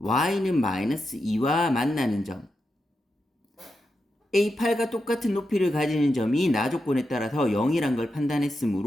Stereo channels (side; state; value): both; normal; correlation 0.87